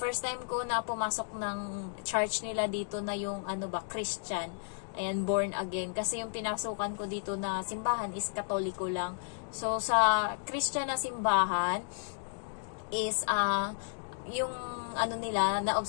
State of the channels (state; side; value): silent; right; digital silence